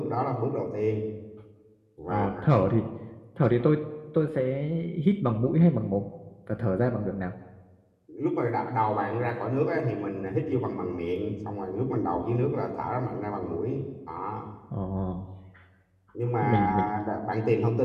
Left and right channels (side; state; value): both; identical; correlation 1.00